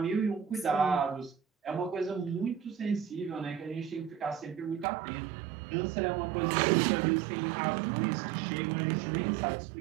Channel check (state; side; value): drops out; left; at 4.9 s